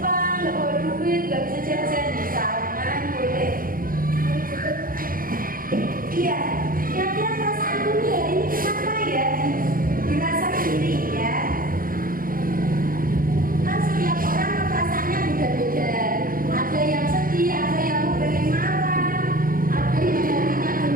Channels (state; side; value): late; left; 0.41 ms